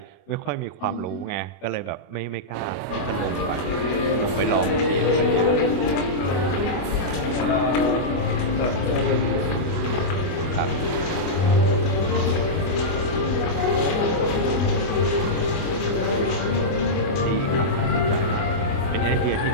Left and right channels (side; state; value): right; late; 24 ms